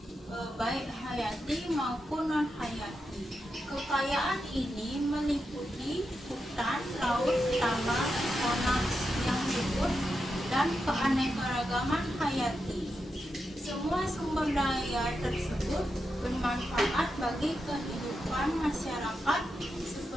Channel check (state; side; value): normal; both; correlation 0.87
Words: baik hayati maupun non hayati. Kekayaan ini meliputi hutan, laut, tambang, tanah yang subur, dan keanekaragaman hayati. Semua sumber daya tersebut bermanfaat bagi kehidupan masyarakat